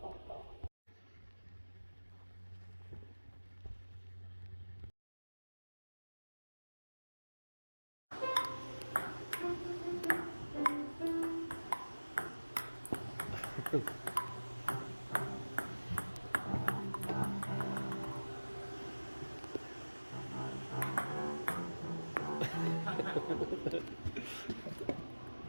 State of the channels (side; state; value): both; inverted; correlation -1.00